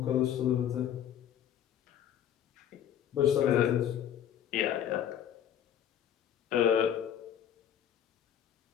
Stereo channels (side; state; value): right; quieter; 9.9 dB